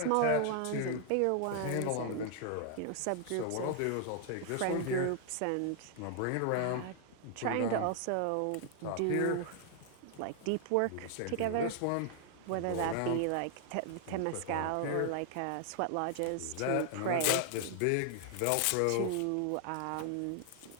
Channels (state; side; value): different; both; correlation 0.00